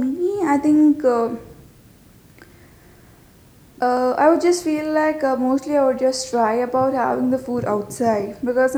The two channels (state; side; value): identical; both; correlation 1.00